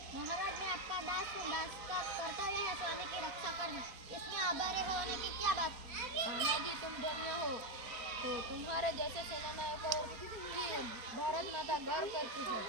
महाराज, मैं आपका दास हूँ। दास का कर्तव्य है स्वामी की रक्षा करना। इसमें आभारी होने की क्या बात? तानाजी, तुम धन्य हो। तो तुम्हारे जैसे सेनानायकों की भारत माता गर्व करती है।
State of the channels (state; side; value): late; left; 4.2 ms